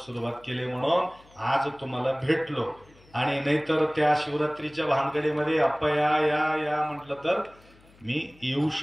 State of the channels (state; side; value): noise; left; hum, 28 dB below the sound